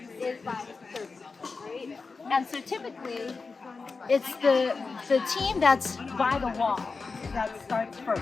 is by serving, right? And so typically, it's the team that's by the wall that starts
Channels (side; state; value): right; quieter; 4.4 dB